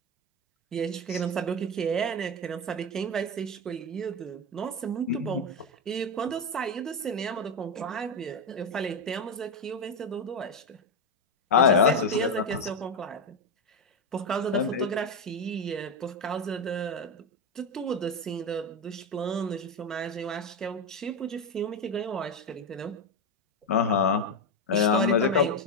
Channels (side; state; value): both; normal; correlation 0.10